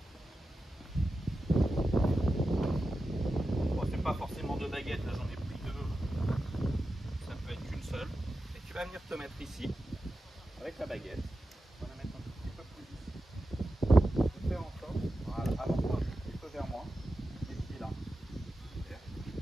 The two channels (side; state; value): both; normal; correlation 0.92